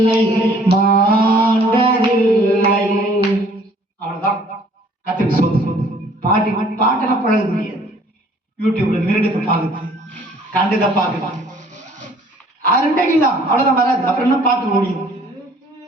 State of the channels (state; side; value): normal; both; correlation 0.57